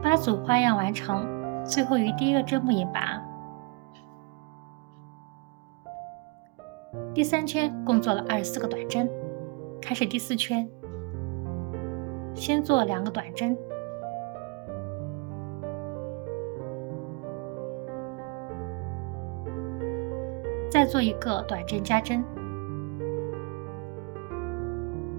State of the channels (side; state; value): left; quieter; 29.1 dB